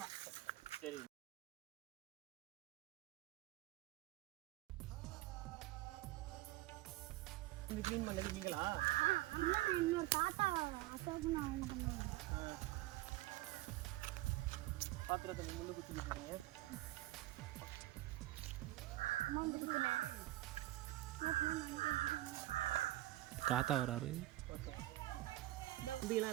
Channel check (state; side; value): quieter; left; 17.0 dB